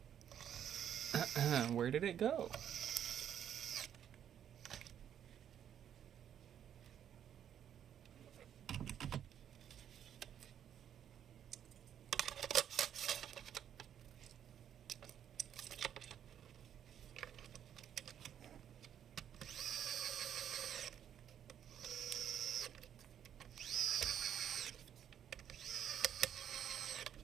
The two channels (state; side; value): quieter; left; 9.5 dB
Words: Where did it go?